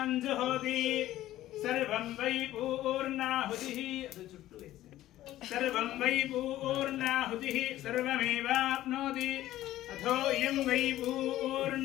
जुहोति सर्वं वै पूर्णाहुतिः सर्वं वै पूर्णाहुतिः सर्वमेवाप्नोति अथो इयं वै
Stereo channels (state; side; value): quieter; right; 14.4 dB